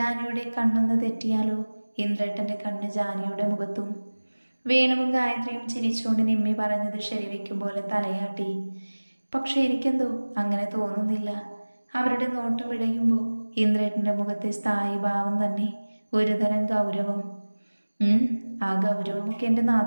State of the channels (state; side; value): inverted; both; correlation -1.00